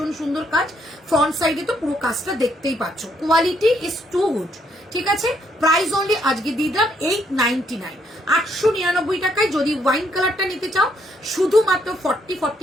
সুন্দর কাজ, ফ্রন্ট সাইডে তো পুরো কাজটা দেখতেই পাচ্ছ। কোয়ালিটি ইজ টু গুড, ঠিক আছে। প্রাইস অনলি আজকে দিয়ে দিলাম 899, 899 টাকায়। যদি ওয়াইন কালারটা নিতে চাও শুধুমাত্র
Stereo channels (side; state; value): both; normal; correlation 0.72